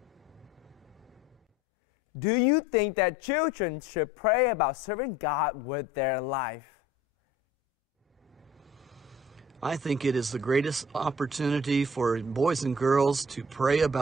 Do you think that children should pray about serving God with their life? I think it is the greatest opportunity for boys and girls to pray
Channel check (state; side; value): normal; both; correlation 0.50